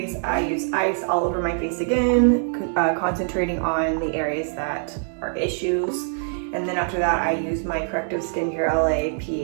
I use ice all over my face again, concentrating on the areas that are issues. And then after that, I use my Corrective Skincare LA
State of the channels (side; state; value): left; silent; digital silence